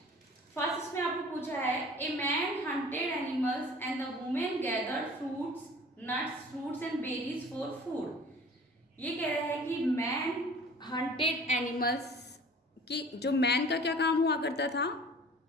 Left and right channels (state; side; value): normal; both; correlation 0.46